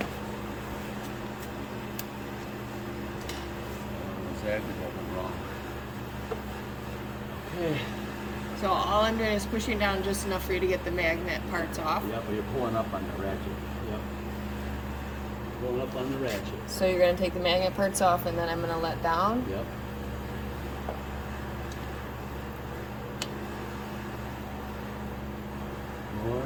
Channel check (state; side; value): identical; both; correlation 1.00